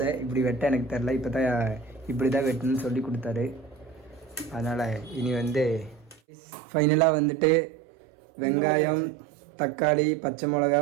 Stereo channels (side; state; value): left; drops out; at 6.2 s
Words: இப்படி வெட்ட எனக்கு தெரில. இப்போ தான் இப்படி தான் வெட்டணும்னு சொல்லி கொடுத்தாரு. அதனால் இனி வந்து ஃபைனலாக வந்துட்டு வெங்காயம், தக்காளி, பச்சை மிளகா,